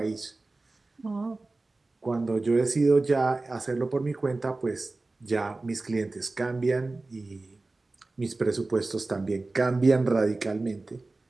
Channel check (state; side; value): quieter; left; 3.3 dB